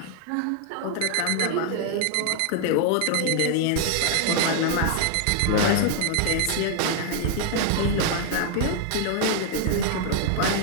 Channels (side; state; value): both; different; correlation 0.00